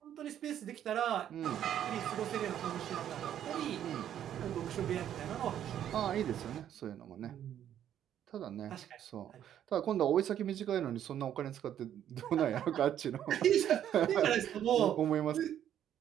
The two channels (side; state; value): left; quieter; 10.4 dB